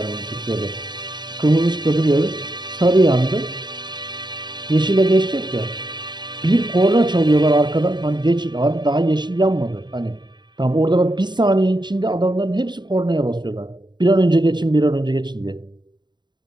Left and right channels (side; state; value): left; late; 0.21 ms